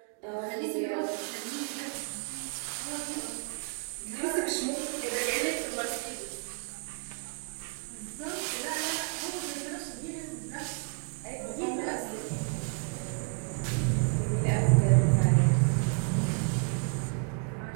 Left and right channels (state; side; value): quieter; left; 39.4 dB